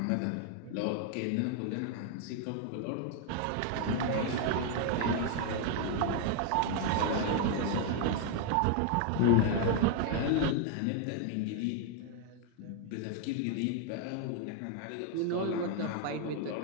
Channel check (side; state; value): both; different; correlation 0.00